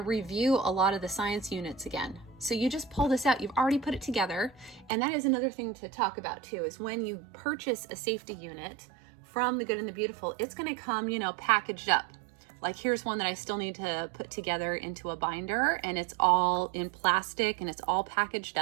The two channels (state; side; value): drops out; left; at 4.9 s